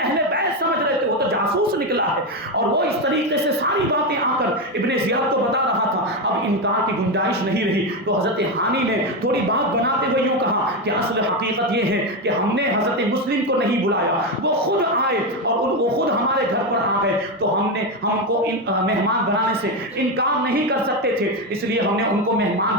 بیت سمجھ رہے تھے، وہ تو جاسوس نکلا ہے، اور وہ اس طریقے سے ساری باتیں آ کر ابن زیاد کو بتا رہا تھا۔ اب انکار کی گنجائش نہیں رہی، تو حضرت ہانی نے تھوڑی بات بناتے ہوئے یوں کہا کہ اصل حقیقت یہ ہے کہ ہم نے حضرت مسلم کو نہیں بلایا، وہ خود آئے اور وہ خود ہمارے گھر پر آ گئے، تو ہم کو مہمان بنانے سے انکار نہیں کر سکتے تھے، اس لیے ہم نے ان کو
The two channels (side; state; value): both; normal; correlation 0.11